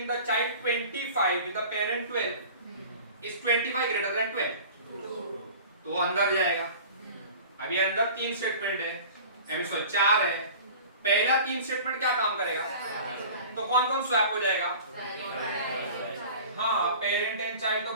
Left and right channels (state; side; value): inverted; both; correlation -0.41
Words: the child 25 with the parent 12। Is 25 greater than 12? तो वो अंदर जाएगा। अभी अंदर 3 स्टेटमेंट है, एम 4 है। पहला 3 स्टेटमेंट क्या काम करेगा? तो कौन कौन स्वैप हो जाएगा? हाँ पेरेंट एंड चाइल्ड। तो